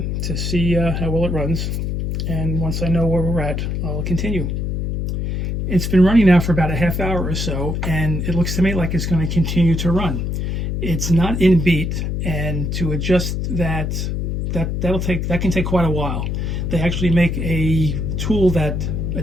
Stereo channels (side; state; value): left; noise; hum, 1 dB below the sound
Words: to see how well it runs. And once I know where we're at, I'll continue. It's been running now for about a half hour or so, and it looks to me like it's going to continue to run. It's not in beat, and to adjust that can take quite a while. They actually make a tool that